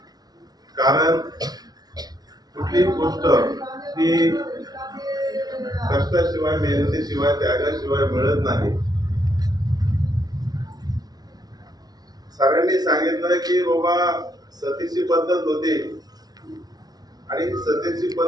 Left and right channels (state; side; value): late; left; 0.19 ms